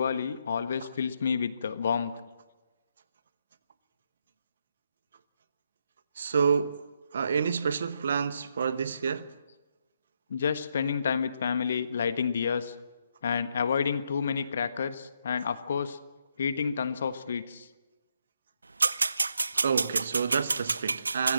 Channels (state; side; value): inverted; both; correlation -0.77